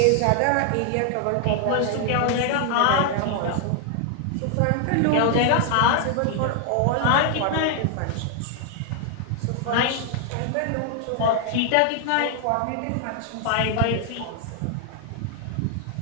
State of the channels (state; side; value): different; both; correlation 0.00